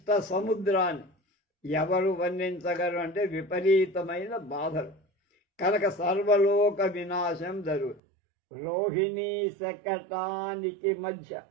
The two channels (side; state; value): left; drops out; at 8.0 s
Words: ఎవరు వర్ణించగలరు అంటే విపరీతమైన బాధలు కనుక సర్వలోక వినాశం జరుగుతుంది. రోహిణీ శకటానికి మధ్య